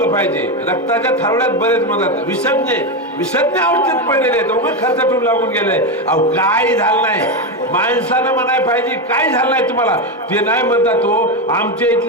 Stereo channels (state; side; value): normal; both; correlation 0.11